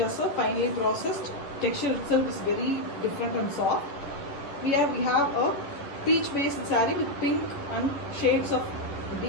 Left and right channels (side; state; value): right; late; 11 ms